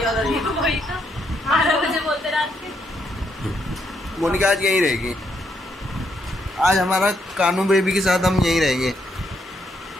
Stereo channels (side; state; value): both; normal; correlation 0.76